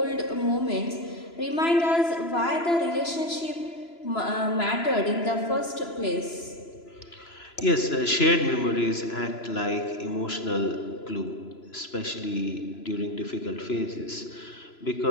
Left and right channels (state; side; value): late; right; 3.0 ms